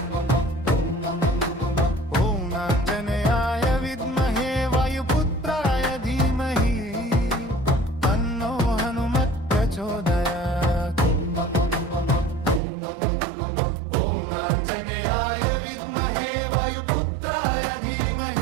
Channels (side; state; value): left; drops out; at 12.6 s